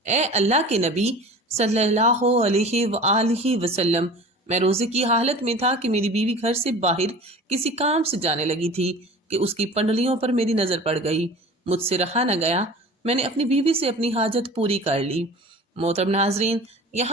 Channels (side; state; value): both; normal; correlation 0.40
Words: اے اللہ کے نبی صلی اللہ علیہ وآلہ وسلم، میں روزے کی حالت میں تھا کہ میری بیوی گھر سے باہر کسی کام سے جانے لگی تھی کہ اس کی پنڈلیوں پر میری نظر پڑ گئی۔ مجھ سے رہا نہ گیا، میں نے اپنی بیوی سے اپنی حاجت پوری کر لی۔ محترم ناظرین،